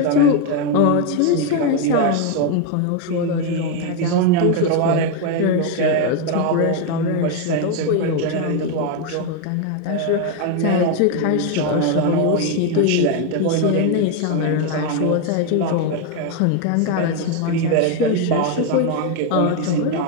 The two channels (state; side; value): different; both; correlation 0.01